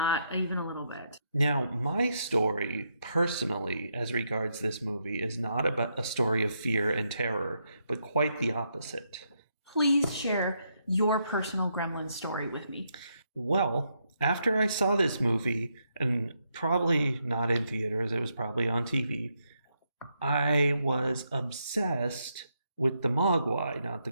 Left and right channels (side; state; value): both; inverted; correlation -0.79